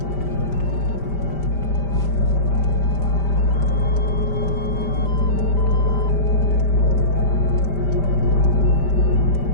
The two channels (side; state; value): right; late; 5.1 ms